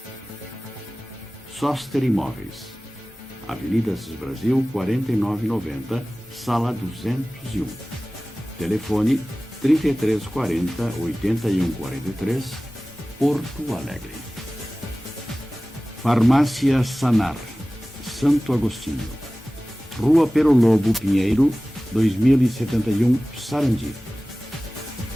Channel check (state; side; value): normal; both; correlation 0.97